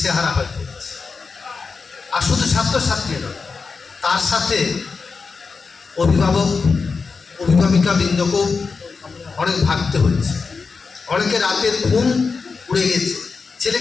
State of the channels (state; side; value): quieter; right; 4.8 dB